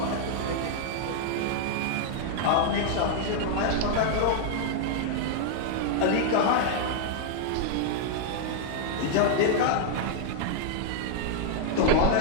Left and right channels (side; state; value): both; different; correlation -0.01